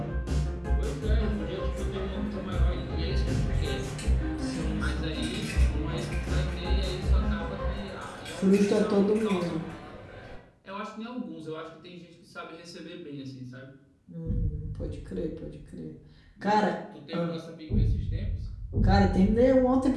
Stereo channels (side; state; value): both; identical; correlation 1.00